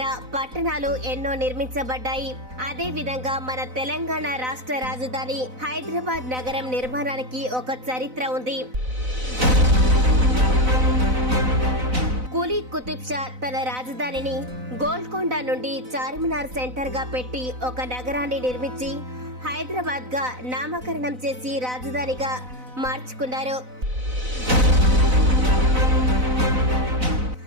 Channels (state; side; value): late; left; 4.0 ms